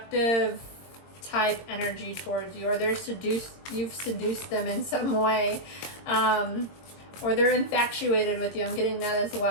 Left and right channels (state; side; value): late; right; 22 ms